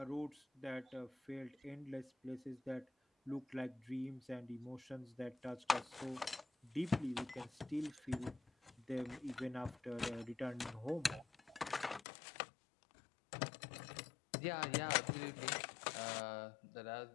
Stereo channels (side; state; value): right; drops out; at 12.0 s